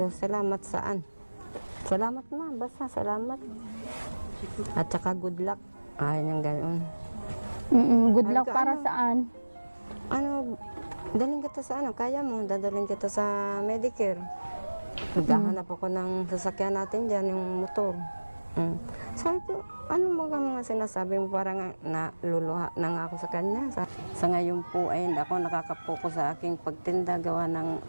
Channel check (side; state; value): both; inverted; correlation -1.00